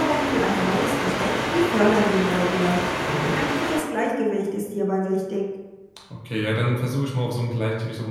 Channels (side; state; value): both; identical; correlation 1.00